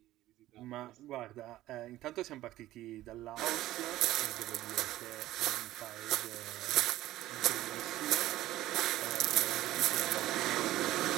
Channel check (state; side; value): quieter; left; 15.2 dB